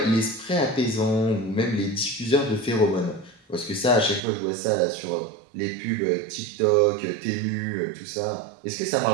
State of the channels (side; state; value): left; drops out; at 4.2 s